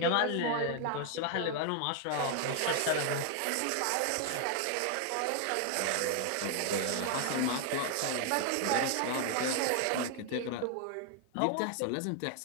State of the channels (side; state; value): both; different; correlation 0.00